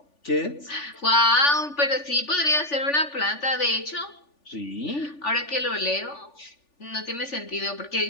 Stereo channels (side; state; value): right; late; 3.4 ms